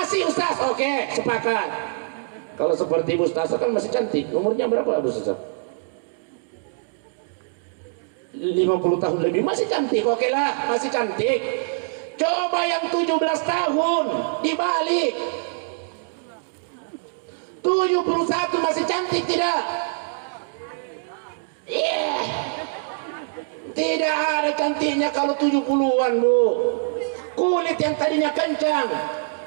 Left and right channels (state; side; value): silent; left; digital silence